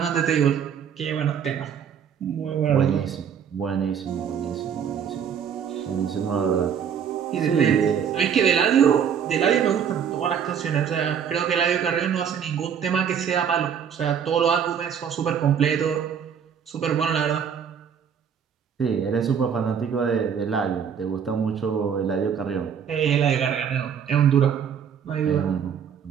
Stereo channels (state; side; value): quieter; left; 7.8 dB